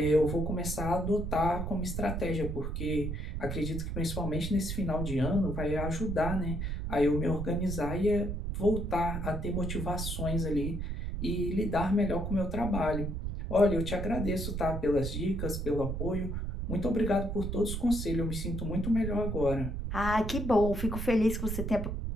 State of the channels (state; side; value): noise; right; rumble, 3 dB below the sound